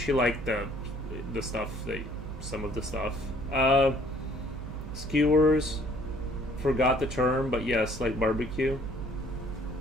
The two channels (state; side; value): noise; right; hum, 9 dB below the sound